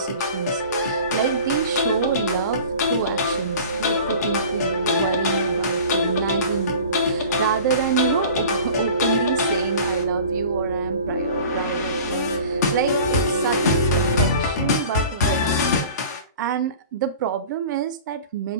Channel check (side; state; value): both; inverted; correlation -0.41